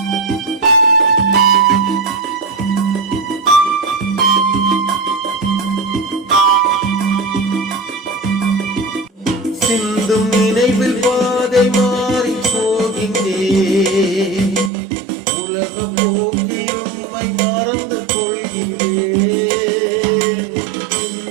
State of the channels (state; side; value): drops out; left; at 14.7 s